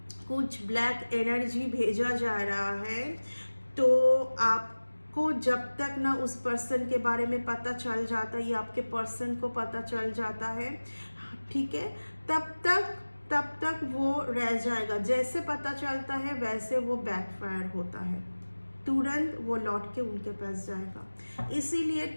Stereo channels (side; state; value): both; inverted; correlation -1.00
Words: कुछ ब्लैक एनर्जी भेजा जा रहा है, तो आपको जब तक ना उस पर्सन के बारे में पता चल जाता है या आपके पर्सन को पता चल जाता है, ठीक है, तब तक वो रह जाएगा। जैसे पता चलता है वैसे वो बैकफायर होता है, तुरंत वो लौट के उनके पास जाएगा। इसीलिए